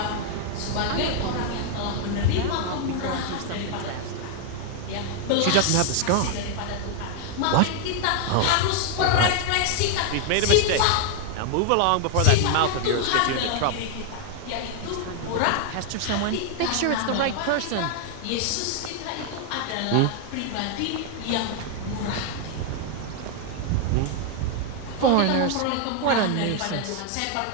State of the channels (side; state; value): both; different; correlation 0.00